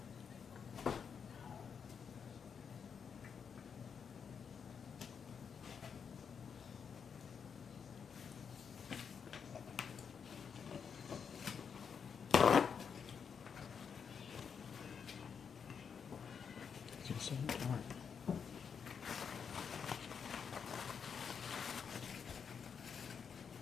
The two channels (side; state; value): right; quieter; 6.7 dB